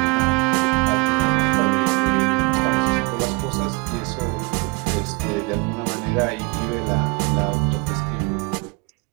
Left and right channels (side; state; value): left; quieter; 27.4 dB